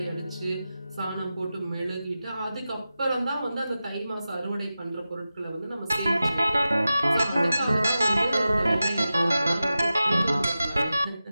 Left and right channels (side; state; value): both; inverted; correlation -0.93